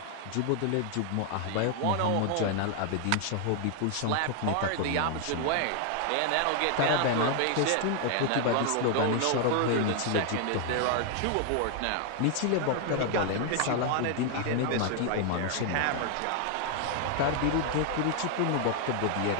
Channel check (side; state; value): both; different; correlation 0.00